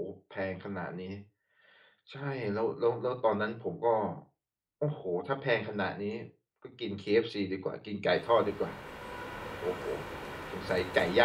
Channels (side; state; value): both; identical; correlation 1.00